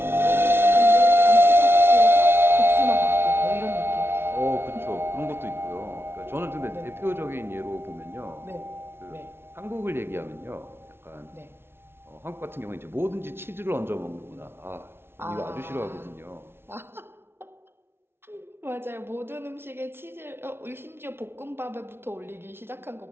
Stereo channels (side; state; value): left; late; 0.12 ms